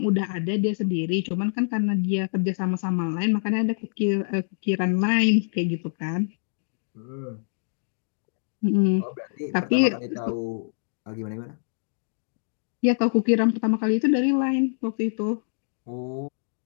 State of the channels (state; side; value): silent; right; digital silence